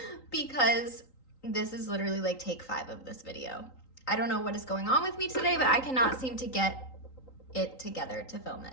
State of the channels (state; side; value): late; right; 3.8 ms